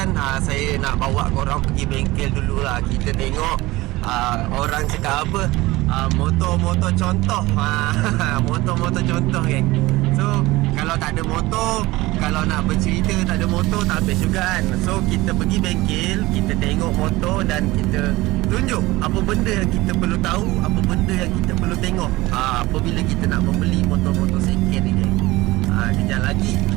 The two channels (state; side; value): quieter; left; 19.6 dB